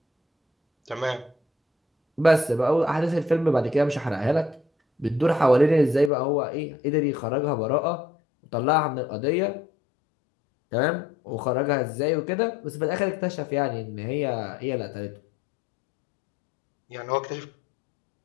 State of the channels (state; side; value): drops out; right; at 6.1 s